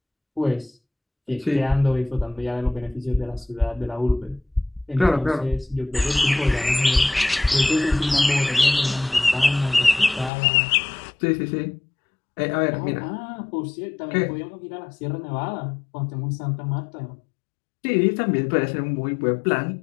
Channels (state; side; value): drops out; right; at 10.3 s